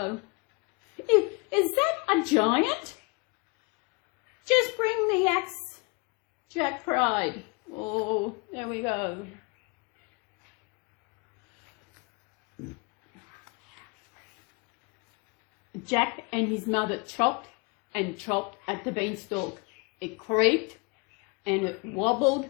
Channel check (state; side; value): quieter; right; 29.9 dB